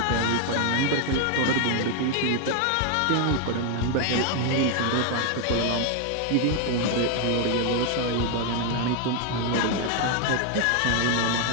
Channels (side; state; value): both; different; correlation 0.00